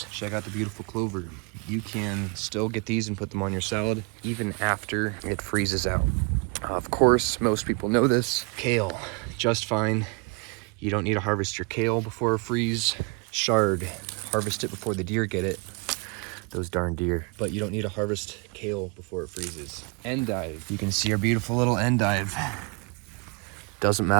check out the beautiful clover. You can still get these and put them on your salad even after it freezes out. Of course, most people know this. Kale, just fine. You don't need to harvest your kale before a freeze. Chard, harvest it before the deer get it. Those darn deer. But you don't need to harvest kale before it freezes. Endive, you can see our beautiful little endive. Doesn't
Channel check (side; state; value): left; quieter; 31.9 dB